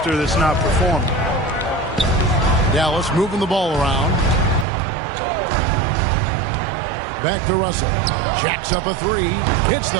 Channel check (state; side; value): drops out; left; at 4.7 s